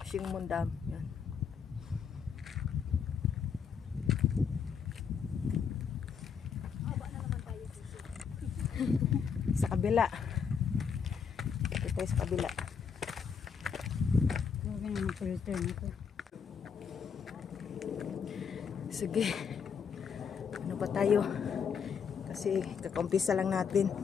Shingmun Dam. Yan. Sa kabila. Ito tayo sa kabila. Huwag na mag-return ako. Sige. Ano ba tayo? Kasi kakampisa lang natin.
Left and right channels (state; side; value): quieter; right; 6.6 dB